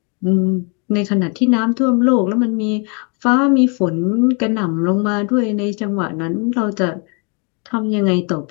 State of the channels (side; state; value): right; quieter; 35.3 dB